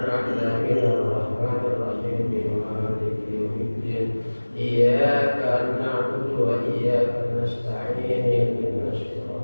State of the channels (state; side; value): inverted; both; correlation -1.00